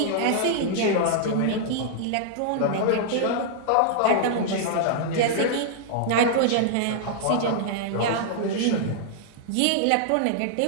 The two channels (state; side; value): different; both; correlation -0.01